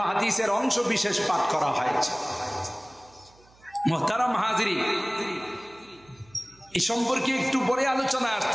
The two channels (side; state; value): right; noise; hum, 29 dB below the sound